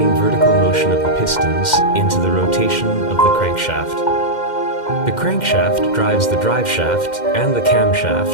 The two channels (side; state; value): right; late; 2.1 ms